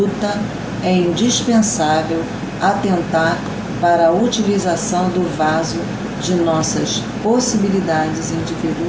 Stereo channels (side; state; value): both; identical; correlation 1.00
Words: é indispensável atentar para a utilização do vaso de nossas possibilidades